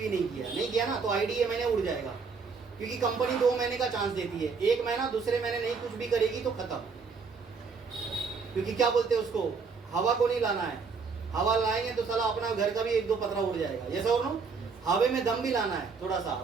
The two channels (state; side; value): quieter; left; 5.1 dB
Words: नहीं किया ना, तो आईडी ये महीने उड़ जाएगा, क्योंकि कंपनी 2 महीने का चांस देती है। 1 महीना दूसरे महीने नहीं कुछ भी करेगी तो खत्म, क्योंकि क्या बोलते हैं उसको, हवा को नहीं लाना है। हवा लाएंगे तो साला अपना घर का भी 1-2 पतरा उड़ जाएगा। यस और नो? हवे में दम भी लाना है, थोड़ा सा